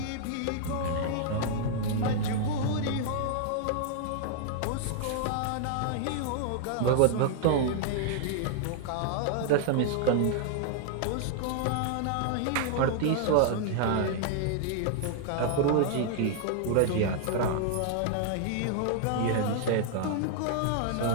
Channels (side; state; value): both; different; correlation -0.01